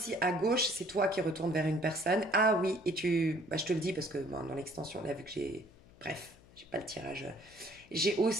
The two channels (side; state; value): left; noise; hum, 25 dB below the sound